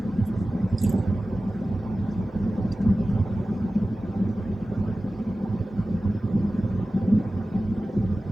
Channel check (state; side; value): normal; both; correlation 0.96